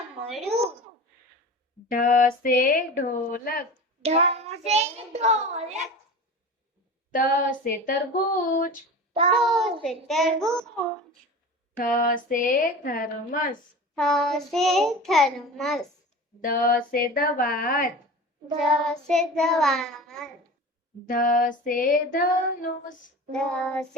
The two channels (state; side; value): normal; both; correlation 0.34